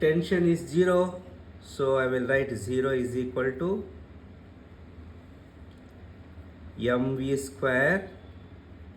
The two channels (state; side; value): identical; both; correlation 1.00